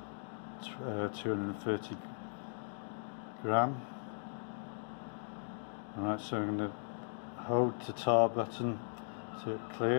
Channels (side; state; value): right; silent; digital silence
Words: 230 gram. Alright, so I'm going to hold the tar button so it